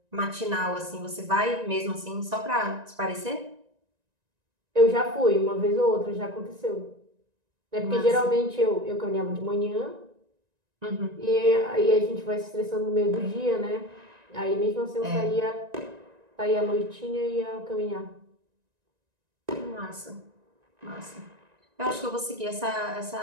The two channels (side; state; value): left; late; 1.9 ms